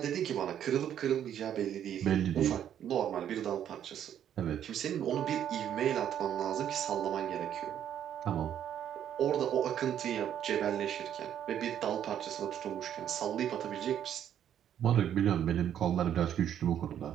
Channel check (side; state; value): left; quieter; 9.9 dB